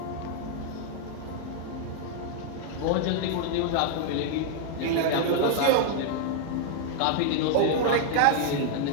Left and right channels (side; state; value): both; different; correlation 0.00